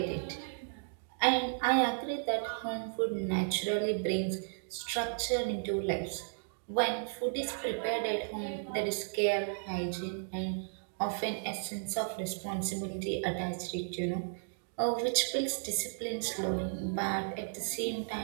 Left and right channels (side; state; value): left; silent; digital silence